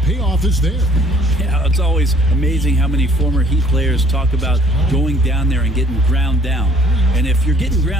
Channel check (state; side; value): normal; both; correlation 0.59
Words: is there. Yeah, it's always amazing how many former Heat players talk about going down there and getting ground down. And if you're getting